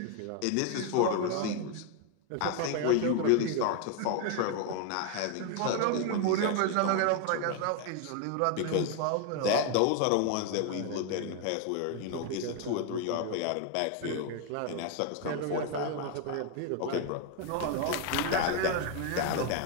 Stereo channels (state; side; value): different; both; correlation 0.01